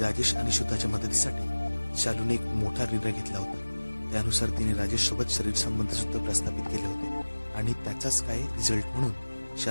आणि सुधाच्या मदतीसाठी शालूने एक मोठा निर्णय घेतला होता। त्यानुसार तिने राजेश सोबत शरीर संबंध सुद्धा प्रस्थापित केले होते आणि त्याचाच काय रिझल्ट म्हणून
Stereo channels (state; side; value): inverted; both; correlation -1.00